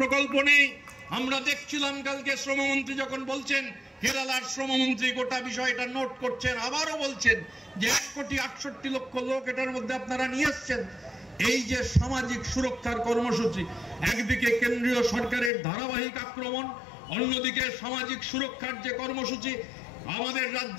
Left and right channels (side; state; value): right; drops out; at 15.5 s